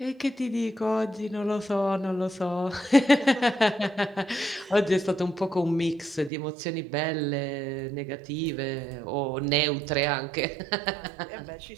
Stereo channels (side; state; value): left; drops out; at 6.3 s